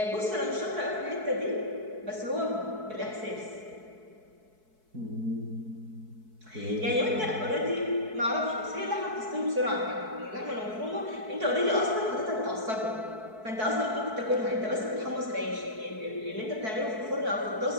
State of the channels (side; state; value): left; late; 4.6 ms